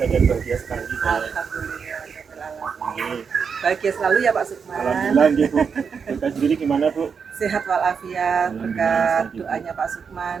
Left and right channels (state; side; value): quieter; left; 6.2 dB